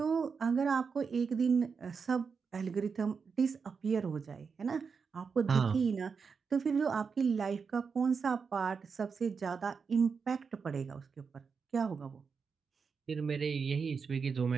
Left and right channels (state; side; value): quieter; left; 5.6 dB